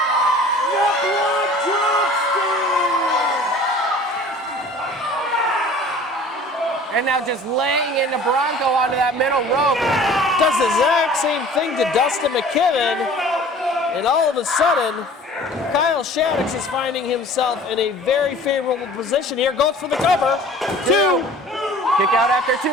your blood drops down. And now just laying into Bronco onto that middle rope. Does the exact same thing to Dustin McKibben, and all of a sudden, Kyle Shaddix is finding himself in a very favorable position here. Goes for the cover. 2. Kick out after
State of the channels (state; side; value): normal; both; correlation 0.46